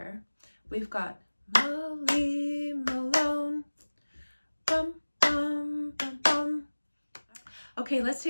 we've got Molly Malone, bum, bum, bum, bum. Okay, let's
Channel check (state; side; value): inverted; both; correlation -1.00